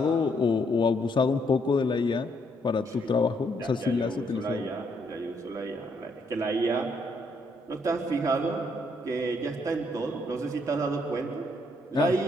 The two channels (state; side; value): normal; both; correlation 0.72